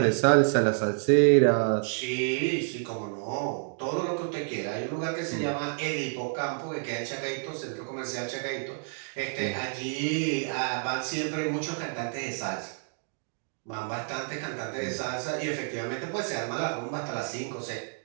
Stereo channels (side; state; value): left; silent; 58 dB below the other